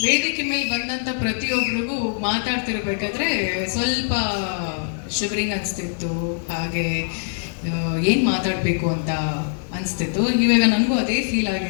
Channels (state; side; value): silent; right; 64 dB below the other